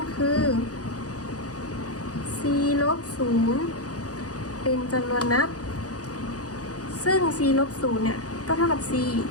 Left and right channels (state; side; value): late; right; 0.67 ms